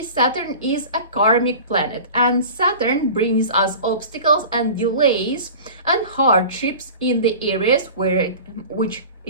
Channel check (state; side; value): inverted; both; correlation -0.38